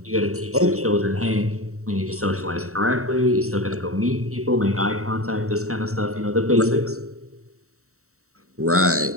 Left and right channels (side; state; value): left; late; 0.64 ms